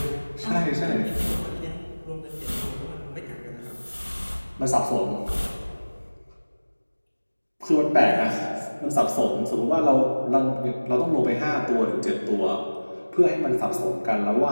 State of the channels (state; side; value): inverted; both; correlation -1.00